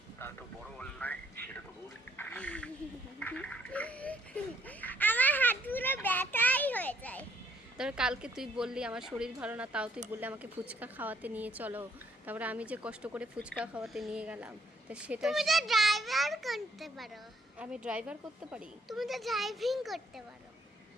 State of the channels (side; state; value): both; normal; correlation 0.67